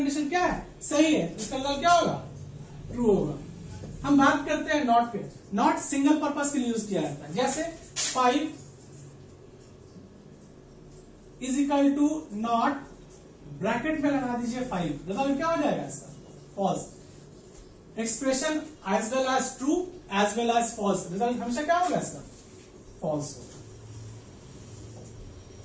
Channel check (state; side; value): identical; both; correlation 1.00